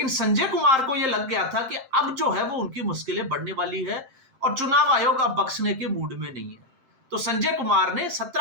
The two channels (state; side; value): late; left; 7.6 ms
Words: संजय कुमार को यह लग गया था कि अब जो है वो उनकी मुश्किलें बढ़ने वाली है और चुनाव आयोग अब बख्शने के मूड में नहीं है। तो संजय कुमार ने